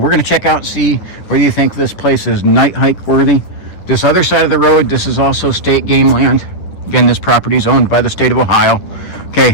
going to check out and see whether you think this place is night hike worthy. This other side of the road, this is also state game land. Again, this property is owned by the state of Ohio.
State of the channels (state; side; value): late; right; 9.9 ms